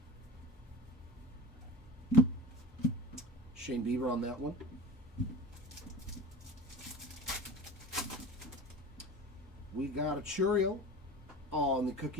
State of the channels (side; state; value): both; normal; correlation 0.34